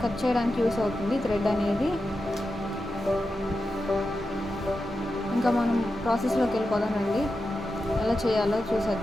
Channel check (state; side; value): normal; both; correlation 0.90